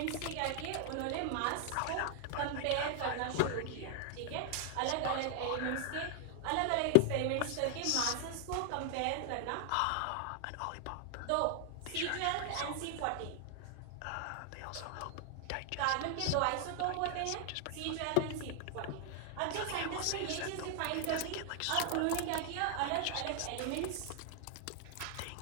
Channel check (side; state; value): both; different; correlation 0.00